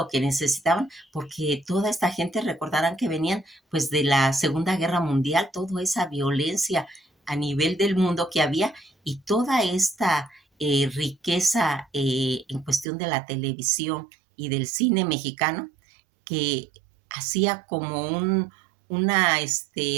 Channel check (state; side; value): drops out; left; at 12.9 s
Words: que necesitaban, porque toda esta gente recordarán que venían pues de la Segunda Guerra Mundial, toda esa violencia a nivel del mundo que había y toda esta riqueza en cuestión de la televisión y del cine mexicano que hacía como una